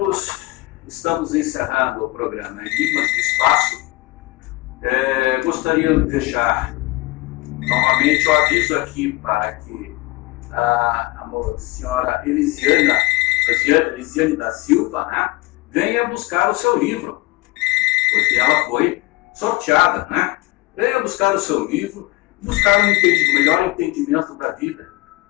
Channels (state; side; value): quieter; right; 21.0 dB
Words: estamos encerrando o programa Enigmas do Espaço. Gostaria de deixar novamente o aviso aqui para que a senhora Elisiane da Silva, né, venha buscar o seu livro, porque ela foi sorteada, né? Venha buscar o seu livro, buscar um melhor entendimento da vida,